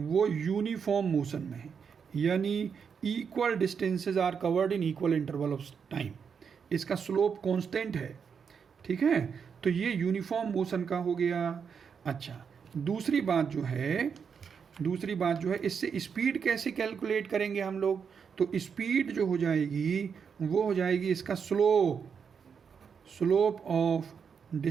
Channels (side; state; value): left; quieter; 6.5 dB